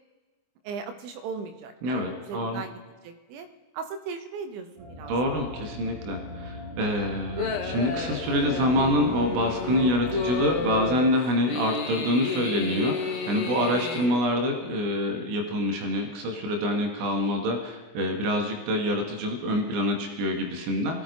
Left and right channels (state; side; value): late; left; 25 ms